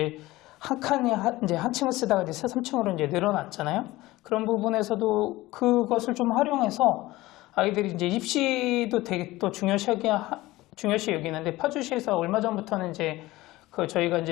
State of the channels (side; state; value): right; quieter; 18.5 dB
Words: 한 칸이 이제 한 층을 쓰다가 이제 3층으로 이제 늘어났잖아요. 그런 부분에서도 그것을 좀 활용해서 아이들이 이제 입시도 되게 또 중요시 여기는데 파주시에서 얼마 전부터는 이제 그 저희가